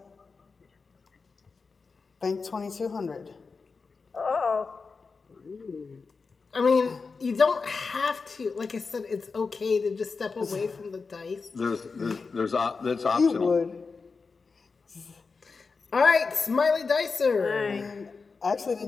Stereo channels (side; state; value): right; quieter; 4.6 dB